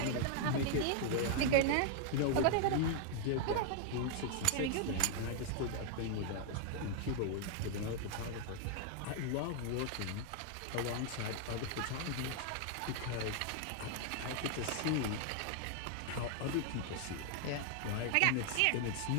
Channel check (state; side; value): different; both; correlation 0.00